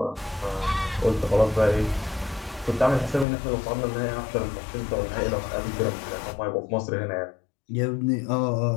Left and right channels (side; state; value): right; drops out; at 3.2 s